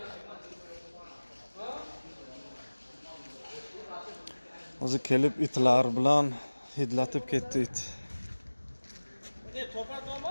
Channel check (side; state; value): both; inverted; correlation -1.00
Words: Hozir kelib itlar bilan hidlatib ketdi it.